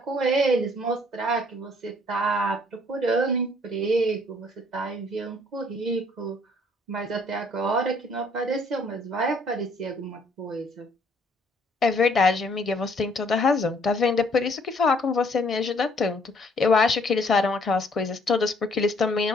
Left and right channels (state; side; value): normal; both; correlation 0.63